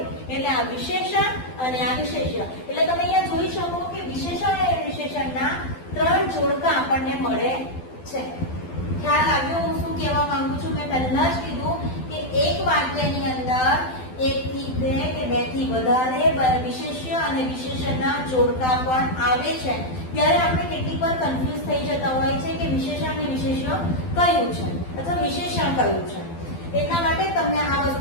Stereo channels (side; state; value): right; late; 12 ms